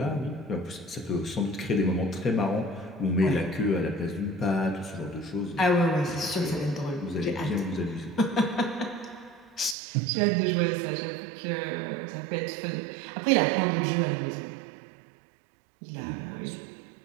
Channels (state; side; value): drops out; left; at 9.8 s